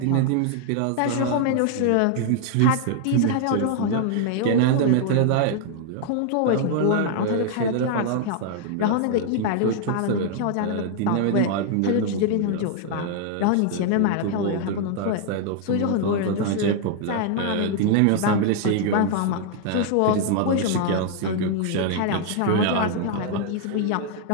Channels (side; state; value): both; different; correlation 0.00